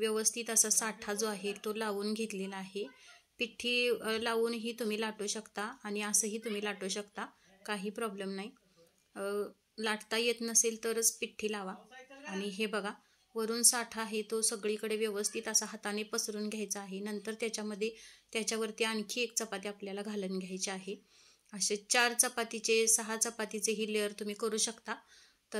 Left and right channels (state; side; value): identical; both; correlation 1.00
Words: असा साठा जो आहे तो लावून घेतलेला आहे। पिठी लावूनही तुम्ही लाटू शकता आणि असंही तुम्ही लाटू शकता, काही प्रॉब्लेम नाही। लाटता येत नसेल तरच पिठी लावा। आणि हे बघा, वरून साठा आहे तो सगळीकडे व्यवस्थित असा हाताने पसरून घ्यायचा आहे। नंतर त्याच्यावरती आणखी एक चपाती आपल्याला घालून घ्यायची आहे। असे 4 चपातीचे 6 चपातीचे ही लेअर तुम्ही करू शकता।